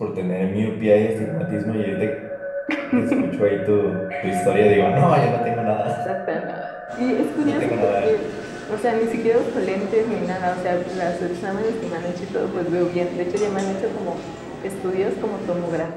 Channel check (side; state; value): both; identical; correlation 1.00